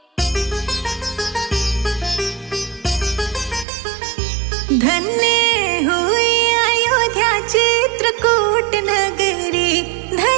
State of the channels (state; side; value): drops out; left; at 3.7 s